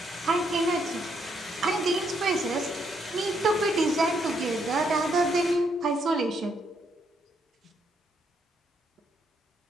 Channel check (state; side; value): normal; both; correlation 0.74